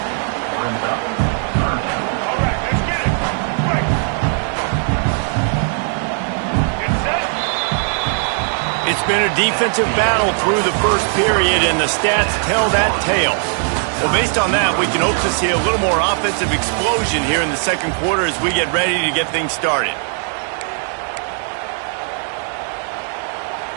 It's been a defensive battle through the 1st period, and the stats tell that tale. Well, based on that, we can hope to see a little more offensive explosion here in the 2nd quarter as we get ready to get things started.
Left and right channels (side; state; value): left; silent; 55 dB below the other